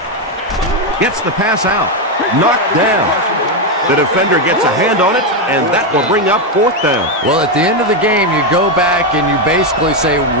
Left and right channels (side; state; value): both; normal; correlation 0.06